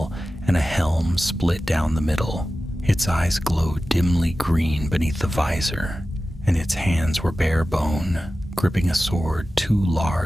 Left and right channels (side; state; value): both; normal; correlation 0.95